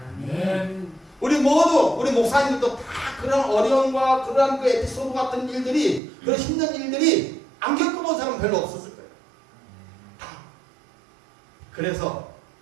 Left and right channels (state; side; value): drops out; left; at 6.0 s